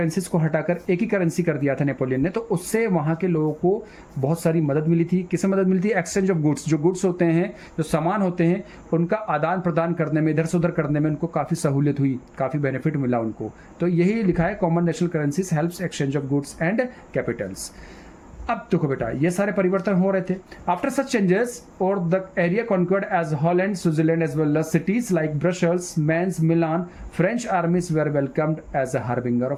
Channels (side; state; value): both; identical; correlation 1.00